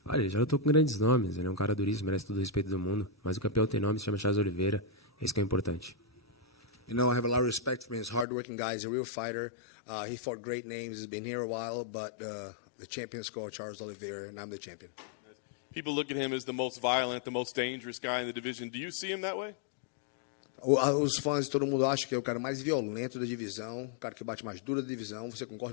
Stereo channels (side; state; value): right; drops out; at 8.2 s